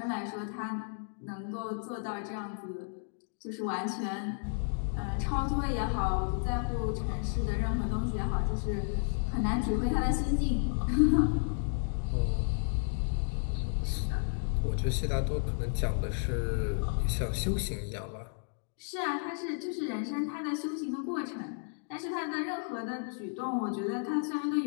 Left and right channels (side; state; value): right; silent; digital silence